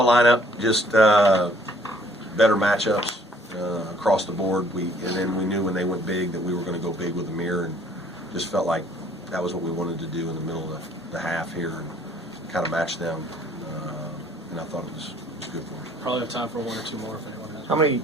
lineup, just better matchups across the board. And then we knew when they went big that we were going to go big with Amir, and just felt like that was what we wanted to do in the middle of the half here and kind of match them. And I thought it was good for us. Probably have time for 1 or 2 more if anyone has. How many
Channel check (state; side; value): normal; both; correlation 0.60